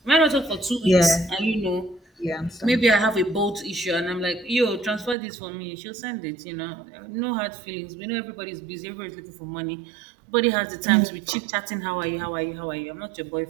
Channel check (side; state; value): left; drops out; at 5.2 s